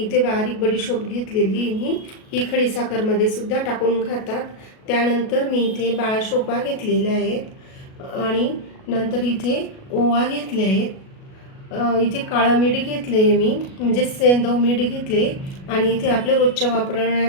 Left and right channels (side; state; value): right; late; 37 ms